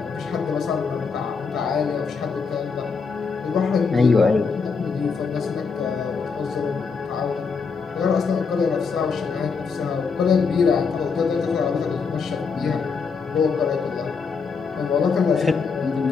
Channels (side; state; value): right; quieter; 5.2 dB